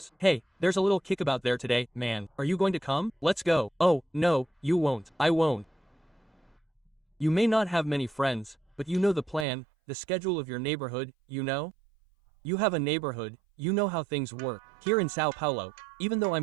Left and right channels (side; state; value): left; drops out; at 9.5 s